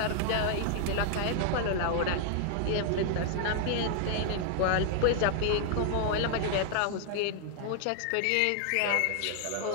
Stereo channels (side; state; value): both; different; correlation 0.00